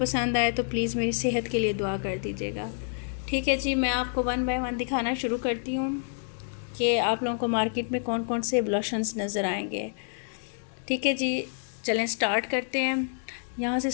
आए तो प्लीज़ मेरी सेहत के लिए दुआ कर दीजिएगा। ठीक है जी, मैं आपको वन बाय वन दिखाना शुरू करती हूँ कि आप लोगों को मार्केट में कौन कौन से ब्लशन्स नज़र आएंगे। ठीक है जी, चलें स्टार्ट करते हैं। यहाँ से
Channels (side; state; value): right; silent; digital silence